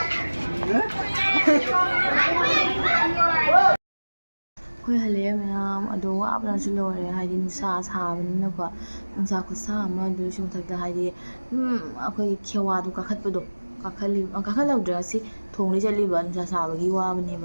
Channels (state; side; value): inverted; both; correlation -1.00